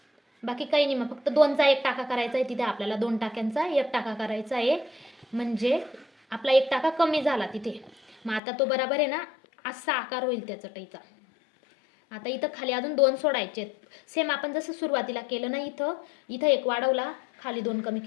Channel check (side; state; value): right; drops out; at 8.4 s